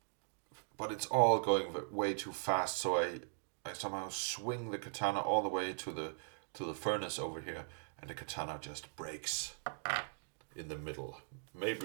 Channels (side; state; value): left; silent; digital silence